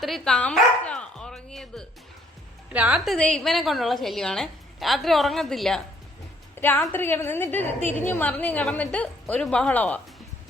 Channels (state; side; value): normal; both; correlation 0.64